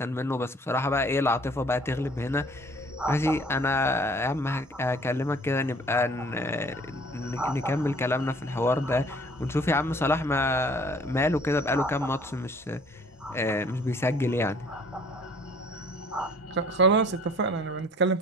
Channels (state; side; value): normal; both; correlation 0.54